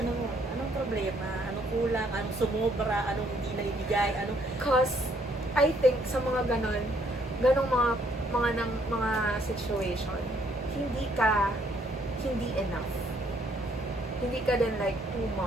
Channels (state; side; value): normal; both; correlation 0.67